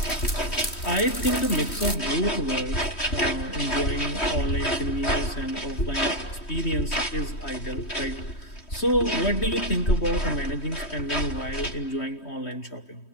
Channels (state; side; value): late; right; 3.1 ms